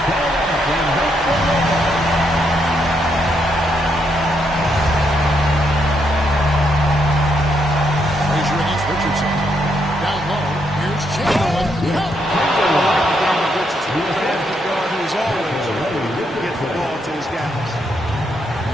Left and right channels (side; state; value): both; normal; correlation 0.77